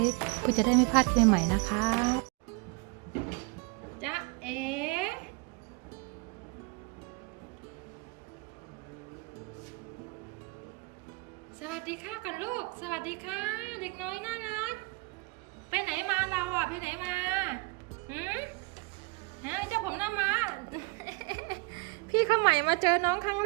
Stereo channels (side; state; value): left; quieter; 28.5 dB